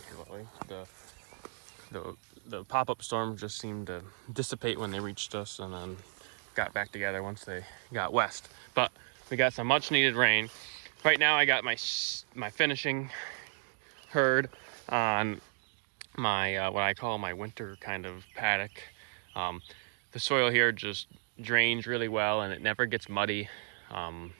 the pop-up storm, just seemed to dissipate when they reached us, and then got back together once they got west. But we got some much needed rain. Right now I got my finishing herd on my what I call my winter kind of paddock. The soil here just drains really well, and it never gets muddy. No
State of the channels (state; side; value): silent; left; digital silence